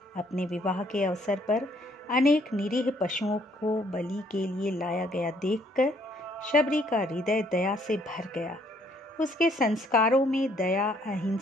अपने विवाह के अवसर पर अनेक निरीह पशुओं को बलि के लिए लाया गया देखकर शबरी का हृदय दया से भर गया। उसके संस्कारों में दया,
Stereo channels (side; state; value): both; normal; correlation 0.65